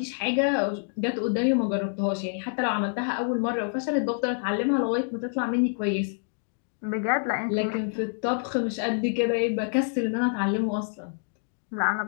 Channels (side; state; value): right; silent; digital silence